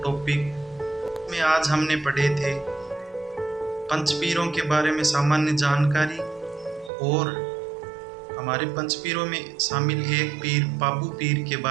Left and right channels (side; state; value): left; drops out; at 6.9 s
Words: टॉपिक में। आज हमने पढ़े थे पंचपीरों के बारे में सामान्य जानकारी, और हमारे पंचपीरों में शामिल एक पीर पाबू पीर के